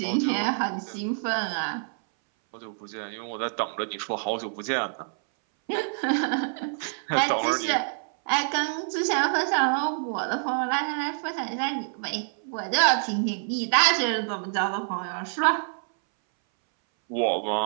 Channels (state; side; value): silent; left; 60 dB below the other